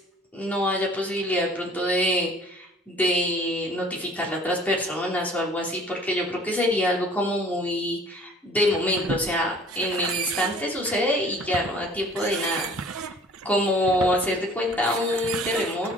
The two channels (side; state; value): both; normal; correlation 0.51